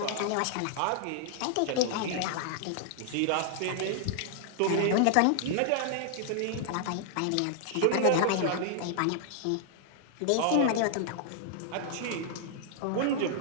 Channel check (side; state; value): both; different; correlation -0.01